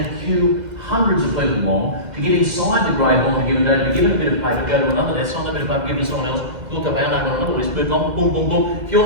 queue hundreds of people long to get inside the Great Hall on a given day, to be given a bit of paper, go to another desk, sign that bit of paper, give it to someone else, look up our name on another list, move on, boom, boom, boom. If your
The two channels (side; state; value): left; late; 2.0 ms